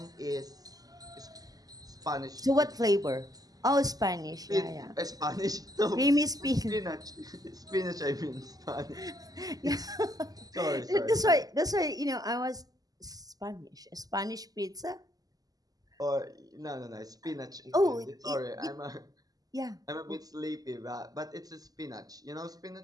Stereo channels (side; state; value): left; late; 0.18 ms